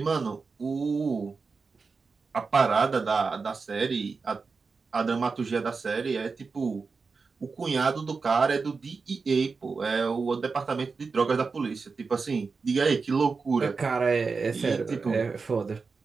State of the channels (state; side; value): quieter; left; 4.7 dB